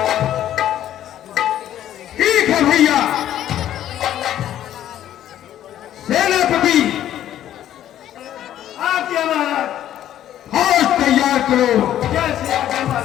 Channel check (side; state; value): right; quieter; 11.7 dB